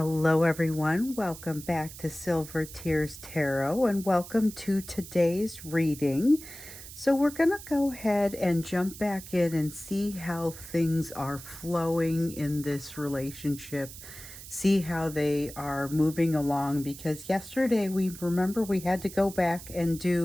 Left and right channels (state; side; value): noise; right; hiss, 14 dB below the sound